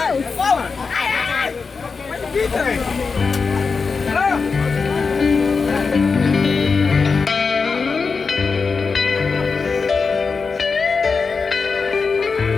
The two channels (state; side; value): quieter; right; 4.9 dB